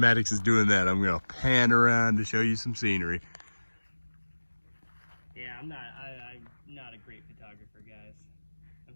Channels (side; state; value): both; inverted; correlation -1.00